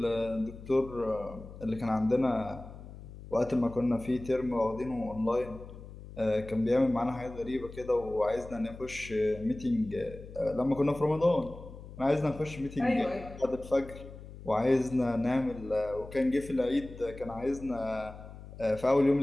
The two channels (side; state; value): left; noise; hum, 15 dB below the sound